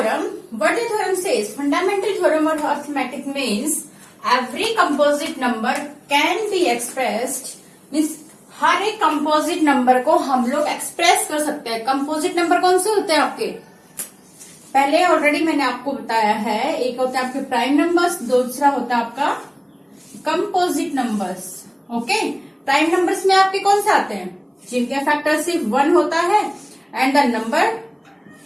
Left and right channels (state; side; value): identical; both; correlation 1.00